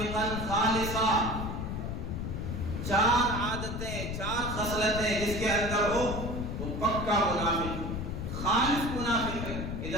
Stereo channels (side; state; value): left; noise; rumble, 4 dB below the sound